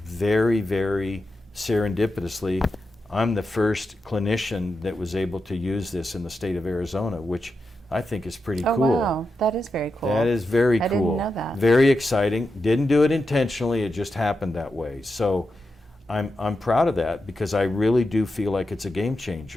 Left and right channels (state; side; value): normal; both; correlation 0.88